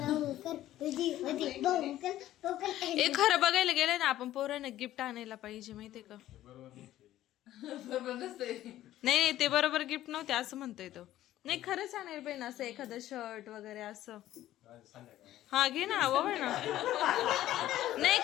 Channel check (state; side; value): quieter; right; 13.8 dB